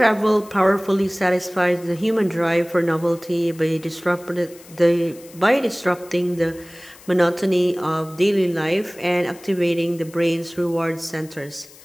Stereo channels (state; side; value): noise; left; hiss, 22 dB below the sound